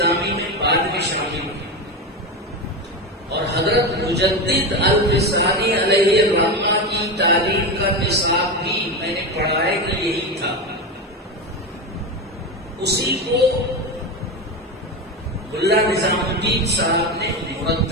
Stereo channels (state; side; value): normal; both; correlation 0.18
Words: میں بعد میں شامل ہوئی، اور حضرت مجدد الفسانی علیہ الرحمہ کی تعلیم کا نصاب بھی میں نے پڑھا ہے کہ یہی تھا۔ اسی کو ملا نظام الدین صاحب نے